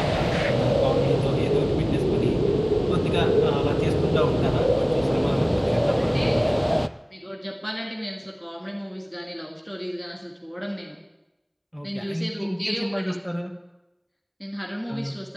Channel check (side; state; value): both; identical; correlation 1.00